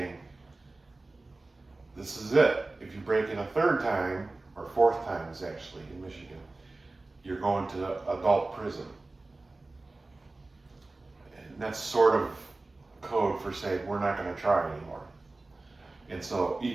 this is it. If you break it a third time, or fourth time is actually in Michigan, you're going to adult prison. And that's sort of code for saying we're not going to try anymore. And so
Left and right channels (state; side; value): quieter; left; 3.2 dB